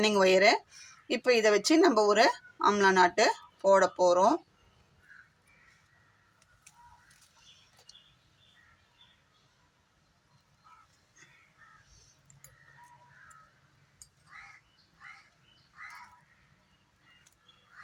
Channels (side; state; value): both; identical; correlation 1.00